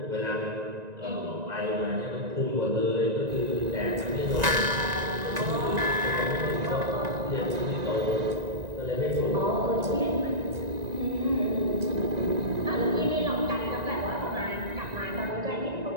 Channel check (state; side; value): late; left; 1.9 ms